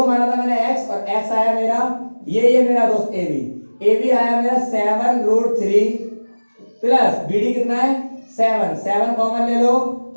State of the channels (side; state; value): both; inverted; correlation -1.00